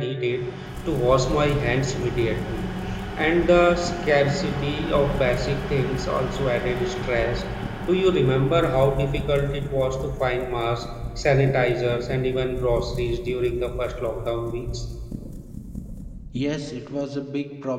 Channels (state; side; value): identical; both; correlation 1.00